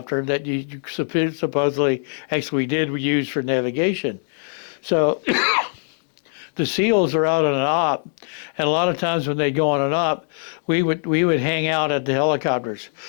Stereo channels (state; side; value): silent; right; digital silence